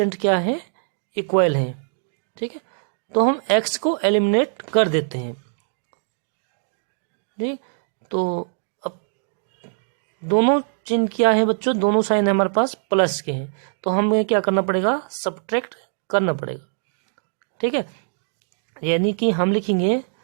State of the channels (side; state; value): left; silent; digital silence